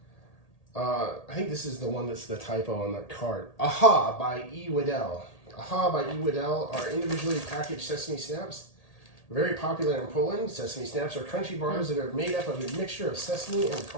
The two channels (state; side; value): late; right; 1.8 ms